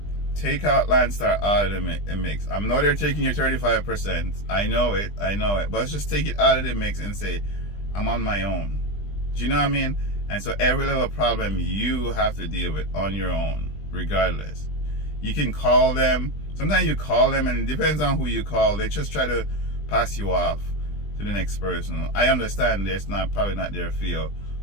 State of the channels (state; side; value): late; right; 20 ms